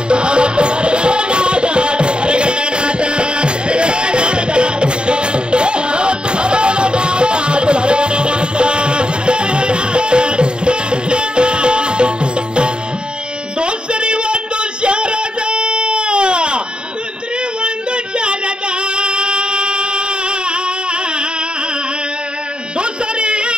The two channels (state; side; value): late; left; 0.050 ms